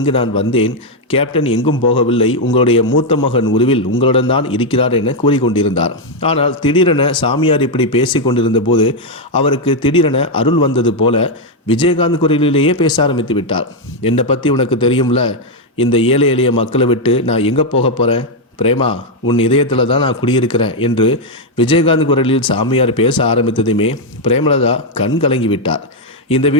நான் வந்தேன். கேப்டன் எங்கும் போகவில்லை, உங்களுடைய மூத்த மகன் உருவில் உங்களுடன் தான் இருக்கிறார் என கூறிக்கொண்டிருந்தார். ஆனால் திடீரென சாமியார் இப்படி பேசி கொண்டிருந்த போது அவருக்கு திடீரென அருள் வந்தது போல விஜயகாந்த் குரலிலேயே பேச ஆரம்பித்து விட்டார். என்னை பற்றி உனக்கு தெரியும்ல, இந்த ஏழை எளிய மக்களை விட்டு நான் எங்கே போக போகிறேன்? பிரேமா, உன் இதயத்தில் தான் நான் குடியிருக்கிறேன் என்று விஜயகாந்த் குரலில் சாமியார் பேச ஆரம்பித்ததுமே பிரேமலதா கண் கலங்கி விட்டார். இந்த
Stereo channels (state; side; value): normal; both; correlation 0.01